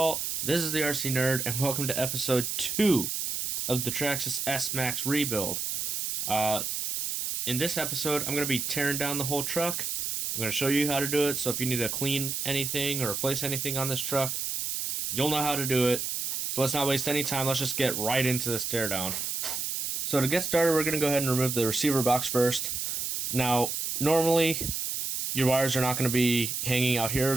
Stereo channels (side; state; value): right; noise; hiss, 2 dB below the sound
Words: This is the RC Nerd, and welcome to episode 2 of the Traxxas S-maxx rebuild. In this episode, I'm going to be tearing down the whole truck. I'm going to show you how to do it, so if you need to clean anything or replace anything on this truck, you'll know how to do it. So let's not waste any time, let's just get right into this teardown. So to get started, we're going to go ahead and remove the receiver box first. Now, normally, your wires are not going to be hanging out